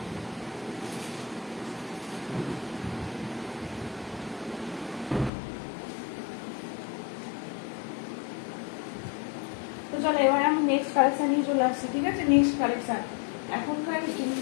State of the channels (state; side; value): drops out; right; at 5.3 s